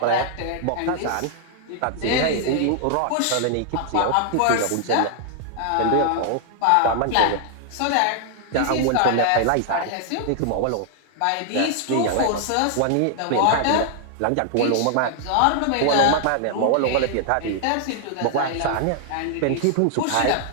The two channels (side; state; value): both; different; correlation 0.00